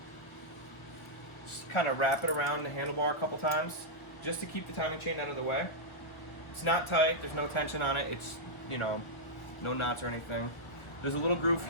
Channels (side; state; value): right; late; 1.1 ms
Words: just kind of wrap it around the handlebar a couple times, just to keep the timing chain out of the way. It's not tight, there's no tension on it, it's, you know, no knots or anything. There's a little groove